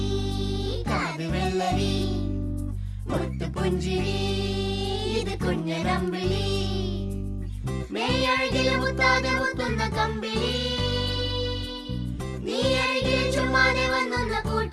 കാത് വെള്ളരി മുത്തു പുഞ്ചിരി ഇത് കുഞ്ഞനമ്പിളി മേയഴകില് മുത്താതെ മുത്തുന്ന കമ്പിളി നീ അഴകിൽ ചുമ്മാതെ വന്നൊന്ന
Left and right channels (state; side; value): identical; both; correlation 1.00